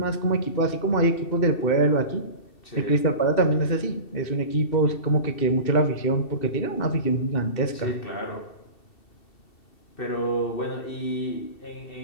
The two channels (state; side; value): late; right; 2.7 ms